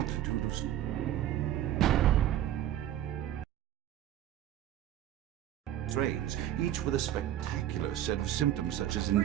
of strains, each with a spectacular set of symptoms such as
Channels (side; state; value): left; quieter; 12.1 dB